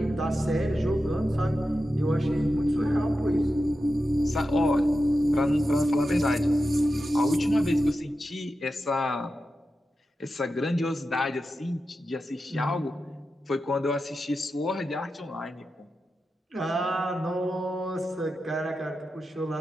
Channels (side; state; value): both; normal; correlation 0.91